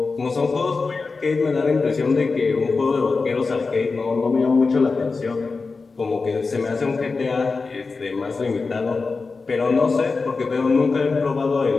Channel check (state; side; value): quieter; right; 4.2 dB